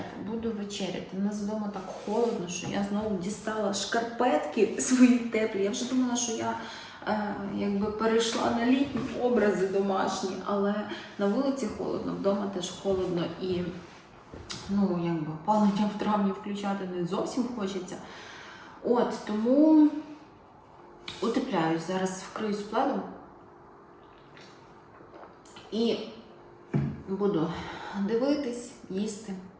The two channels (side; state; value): both; identical; correlation 1.00